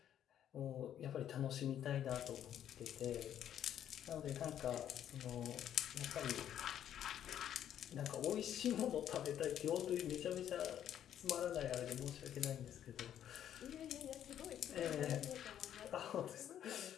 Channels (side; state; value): right; quieter; 10.3 dB